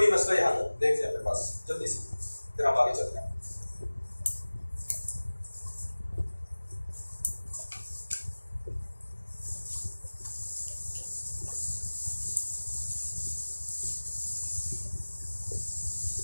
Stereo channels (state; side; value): inverted; both; correlation -1.00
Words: मसला यहाँ तक देखते हैं अपने पास जल्दी से, फिर हम आगे चलते हैं।